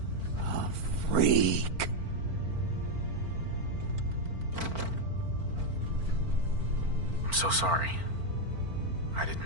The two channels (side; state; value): left; late; 4.4 ms